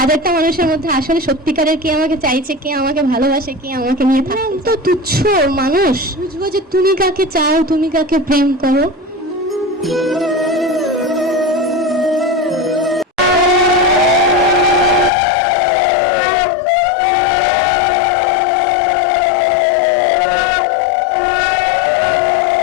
মানুষের মধ্যে আসলে সত্যিকারের কে আমাকে চাইছে, কে আমাকে ভালোবাসে, কে আমাকে নিয়ে থাকে। তো তুচ্ছ মানুষ, বুঝবো যে তুমি কাকে চাও, তুমি কাকে প্রেম করো।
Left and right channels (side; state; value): right; drops out; at 15.1 s